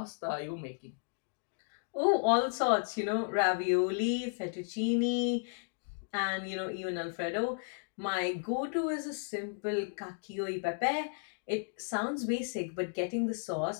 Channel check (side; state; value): right; silent; digital silence